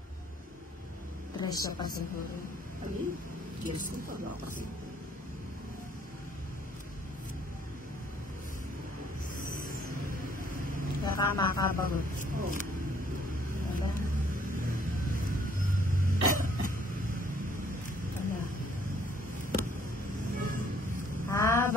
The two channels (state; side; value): normal; both; correlation 0.63